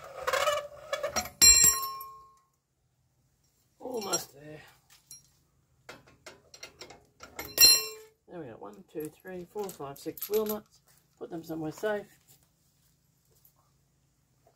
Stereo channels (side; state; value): both; identical; correlation 1.00